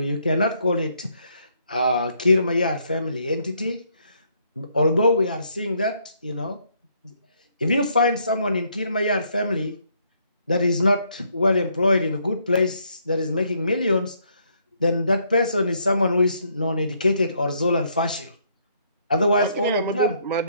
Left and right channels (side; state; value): both; inverted; correlation -0.71